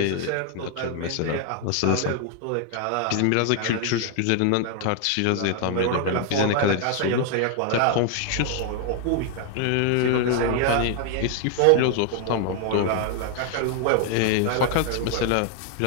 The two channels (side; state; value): both; different; correlation 0.00